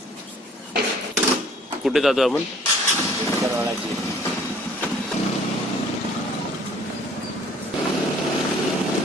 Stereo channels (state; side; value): normal; both; correlation 0.56